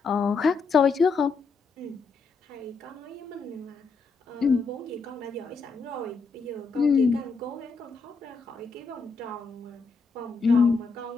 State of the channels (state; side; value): quieter; right; 4.4 dB